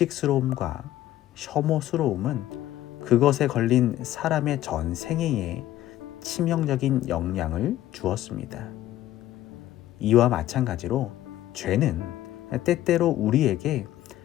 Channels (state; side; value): quieter; right; 13.8 dB